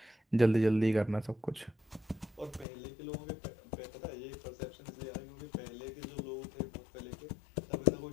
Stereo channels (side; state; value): right; drops out; at 2.7 s